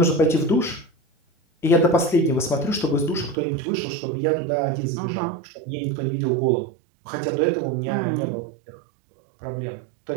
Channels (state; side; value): drops out; left; at 3.4 s